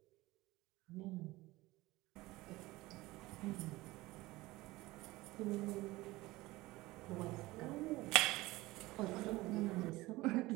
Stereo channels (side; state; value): left; quieter; 19.6 dB